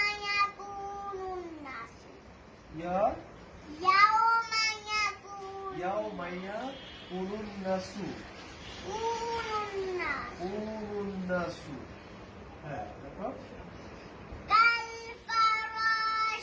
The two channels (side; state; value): both; identical; correlation 1.00